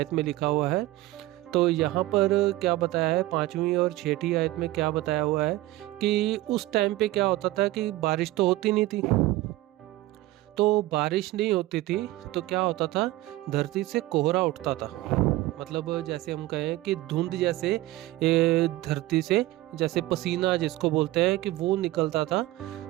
में लिखा हुआ है। तो यहाँ पर क्या बताया है, 5वीं और 6ठी आयत में क्या बताया हुआ है कि उस टाइम पे क्या होता था कि बारिश तो होती नहीं थी। तो बारिश नहीं होती थी तो क्या होता था, धरती से कोहरा उठता था। मतलब जैसे हम कहें कि धुंध जैसे धरती से जैसे पसीना जिसको बोलते हैं कि वो निकलता था।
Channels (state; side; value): quieter; left; 17.2 dB